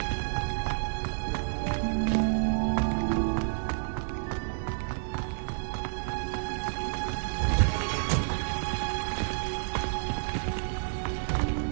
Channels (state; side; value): silent; left; digital silence